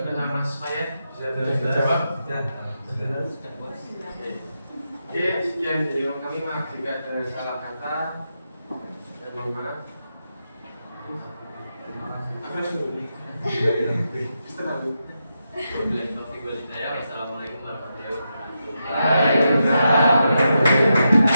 Mas Fayat bisa jawab? Oke, sekian dari kami. Maaf jika ada salah kata dan mohon maaf. Apa sih? Wassalamualaikum warahmatullahi wabarakatuh.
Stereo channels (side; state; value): both; inverted; correlation -0.86